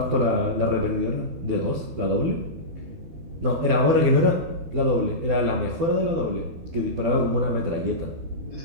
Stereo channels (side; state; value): left; late; 12 ms